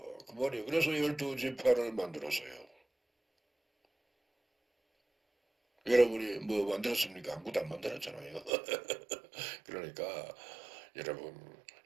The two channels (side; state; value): left; drops out; at 8.5 s